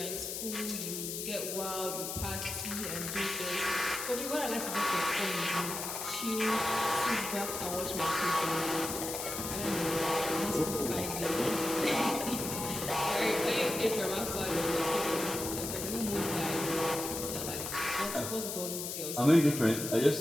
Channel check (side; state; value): left; noise; hiss, 5 dB below the sound